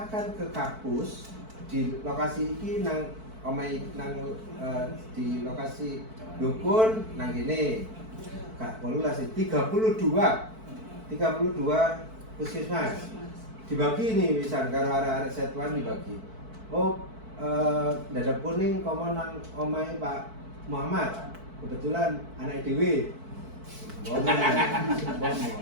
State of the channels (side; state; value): left; late; 4.5 ms